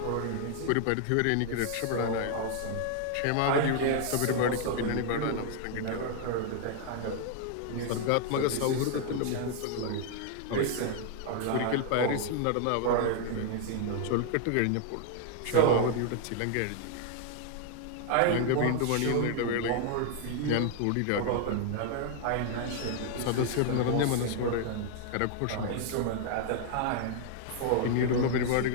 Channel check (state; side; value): different; both; correlation 0.00